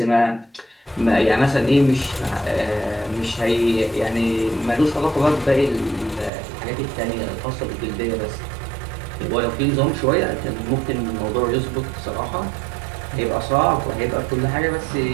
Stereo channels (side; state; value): left; drops out; at 6.3 s